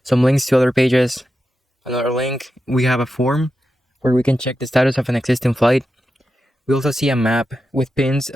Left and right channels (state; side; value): normal; both; correlation 0.90